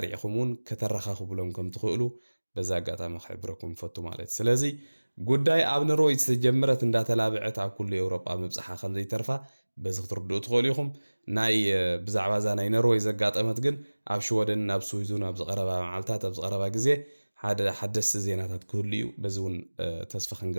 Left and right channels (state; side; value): inverted; both; correlation -1.00